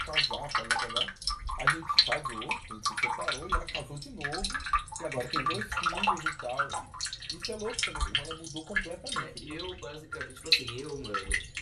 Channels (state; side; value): identical; both; correlation 1.00